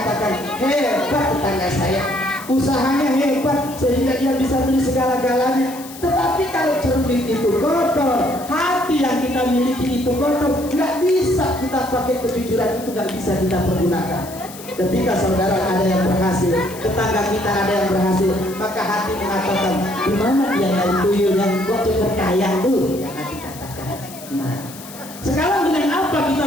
hebat tetangga saya, usahanya hebat sehingga dia bisa beli segala-galanya. Tetapi kalau cermin itu kotor, hati yang kita miliki itu kotor, nggak bisa kita pakai kejujuran itu, nggak bisa kita pergunakan. Ketika saudara ada yang berhasil, tetangga kita ada yang berhasil, maka hati mengatakan, di mana dia dari tuyul yang gua cepat kaya tuh, yang hati katakan. Nah, sekarang dengan apa kita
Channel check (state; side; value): noise; left; hiss, 16 dB below the sound